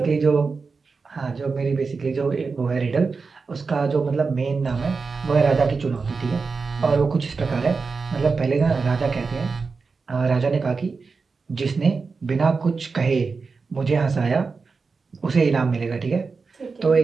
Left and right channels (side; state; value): left; quieter; 4.6 dB